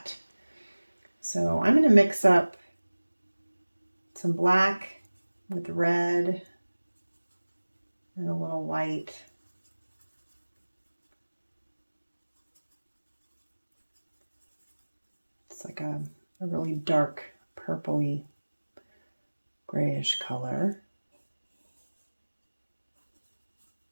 So I'm going to mix up some black with red and a little white. It's like a really dark purpley grayish color.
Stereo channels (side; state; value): both; inverted; correlation -1.00